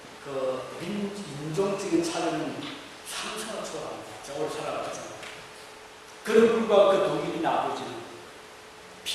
그 인종적인 차이는 상상을 초월합니다. 제가 오래 살아봤잖아요. 그런 불과 그 독일인 아버지는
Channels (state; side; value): identical; both; correlation 1.00